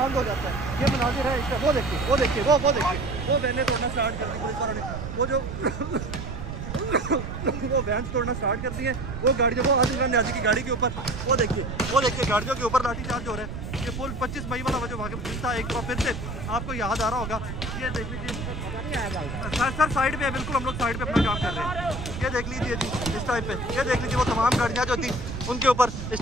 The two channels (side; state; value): right; noise; rumble, 7 dB below the sound